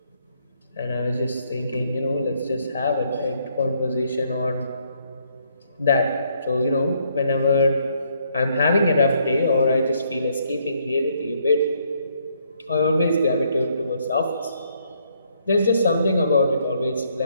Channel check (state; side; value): inverted; both; correlation -0.71